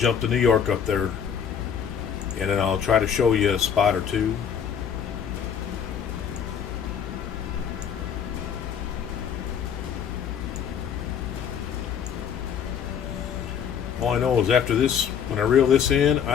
to New York up there, and then I'll try to show you a spot or two. All I know is after this, when I reel this in,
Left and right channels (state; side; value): quieter; right; 7.8 dB